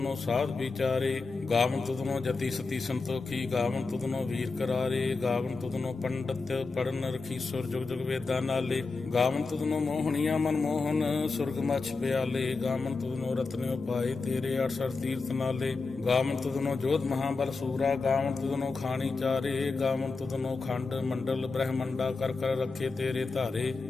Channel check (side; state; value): right; quieter; 4.1 dB